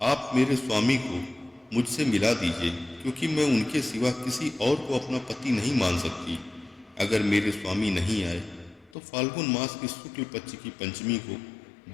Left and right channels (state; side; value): drops out; right; at 8.9 s